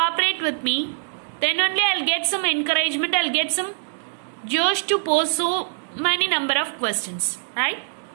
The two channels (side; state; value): left; silent; digital silence